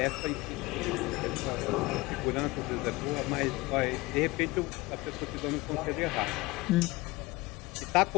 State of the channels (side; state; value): right; quieter; 21.9 dB